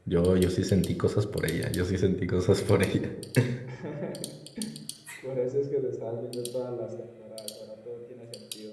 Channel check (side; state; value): both; identical; correlation 1.00